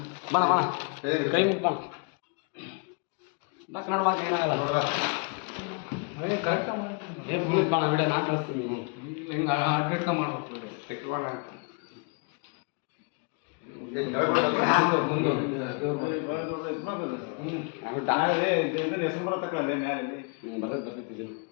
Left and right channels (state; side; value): quieter; right; 36.2 dB